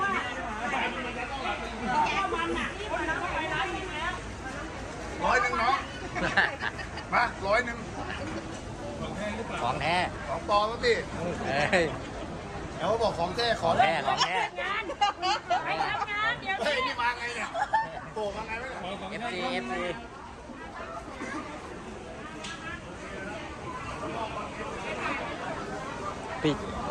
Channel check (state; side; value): identical; both; correlation 1.00